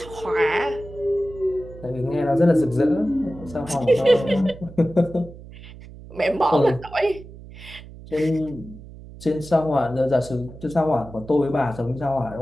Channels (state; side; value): noise; right; hum, 17 dB below the sound